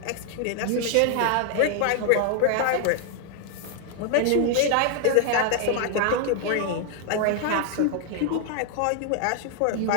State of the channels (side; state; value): both; different; correlation 0.00